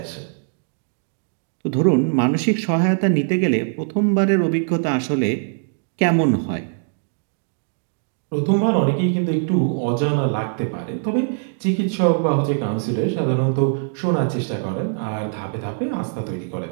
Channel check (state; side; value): silent; left; 64 dB below the other